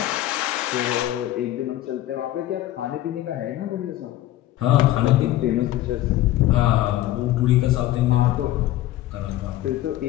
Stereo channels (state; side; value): quieter; right; 14.5 dB